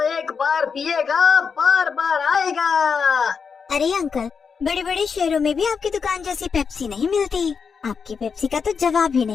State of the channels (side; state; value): right; quieter; 5.9 dB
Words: एक बार पिएगा बार बार आएगा। अरे अंकल, बड़े बड़े शहरों में भी आपकी दुकान जैसी पेप्सी नहीं मिलती। आपकी पेप्सी का तो जवाब ही